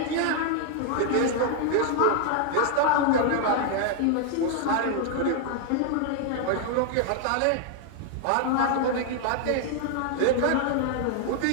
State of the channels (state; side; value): different; both; correlation 0.00